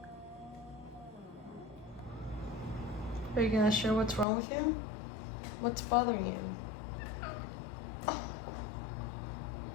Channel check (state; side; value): drops out; right; at 4.2 s